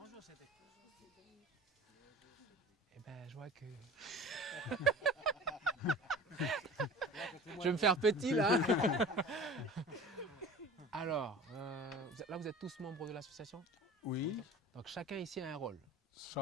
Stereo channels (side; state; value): both; normal; correlation 0.40